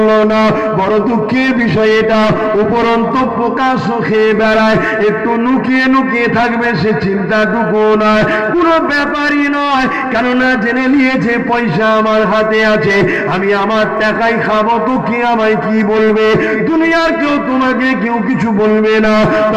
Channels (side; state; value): both; identical; correlation 1.00